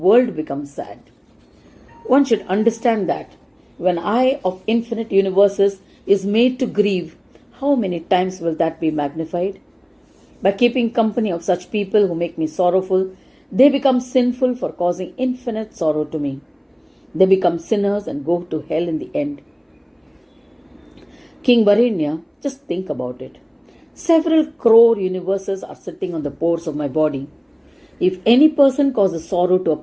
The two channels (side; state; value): both; identical; correlation 1.00